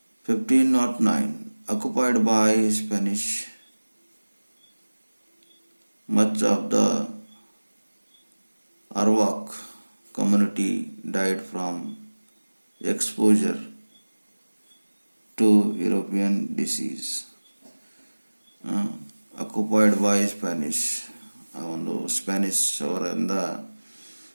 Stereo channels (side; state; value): both; inverted; correlation -1.00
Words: 1509 occupied by Spanish. Much of the Arawak community died from exposure to European disease. Occupied by Spanish, ಆ ಒಂದು ಸ್ಪ್ಯಾನಿಷ್ ಅವರಿಂದ